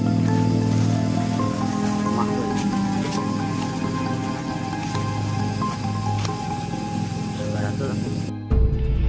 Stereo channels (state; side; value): identical; both; correlation 1.00